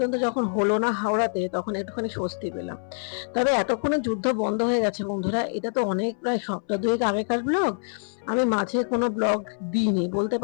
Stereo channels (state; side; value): silent; right; 61 dB below the other